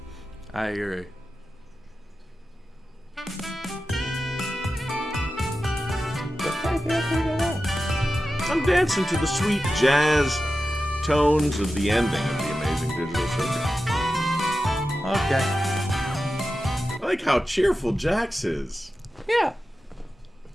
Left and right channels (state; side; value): normal; both; correlation 0.92